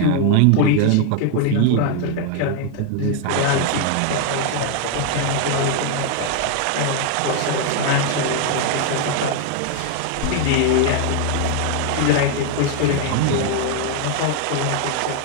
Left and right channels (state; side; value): different; both; correlation 0.00